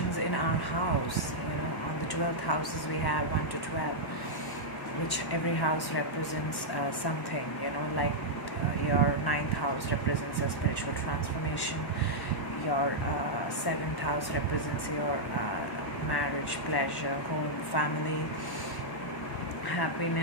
in our house, on the 12th houses we have 1 to 12, which every house represents something, like your ninth house represents a spiritual transformation, your seventh house represents your marriage, pleasure, home, family,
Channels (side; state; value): right; late; 1.1 ms